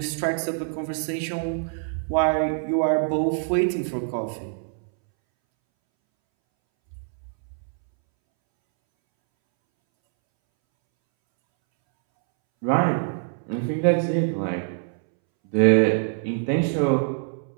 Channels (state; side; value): silent; left; 62 dB below the other